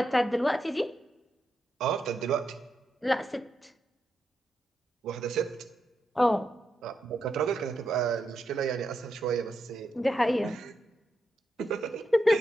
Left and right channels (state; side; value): normal; both; correlation 0.84